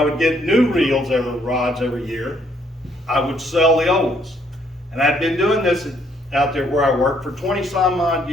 would get new rods every year, I would sell the old ones. And I'd been doing this out there where I worked for 20 some odd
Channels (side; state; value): both; normal; correlation 0.68